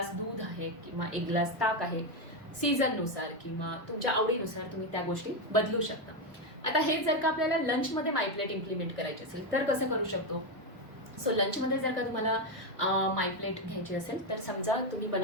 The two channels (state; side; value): normal; both; correlation 0.08